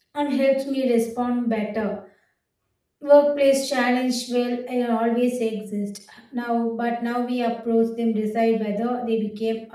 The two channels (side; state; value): both; identical; correlation 1.00